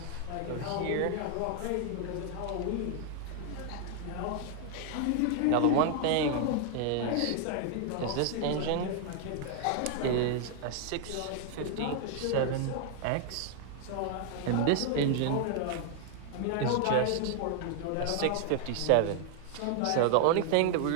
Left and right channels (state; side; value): different; both; correlation 0.00